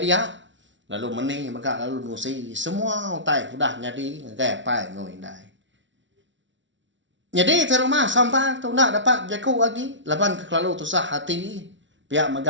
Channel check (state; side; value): late; left; 0.55 ms